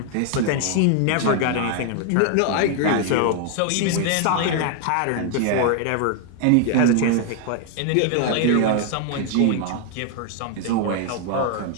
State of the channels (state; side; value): different; both; correlation 0.00